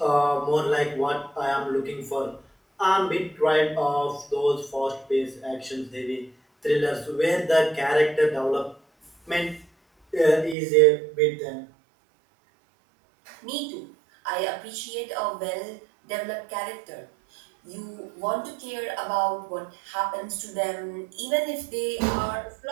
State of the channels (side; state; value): left; drops out; at 10.6 s